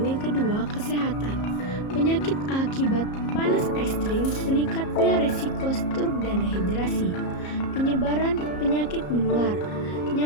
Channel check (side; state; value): right; late; 34 ms